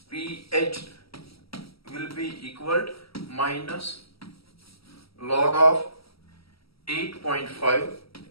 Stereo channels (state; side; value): late; right; 0.76 ms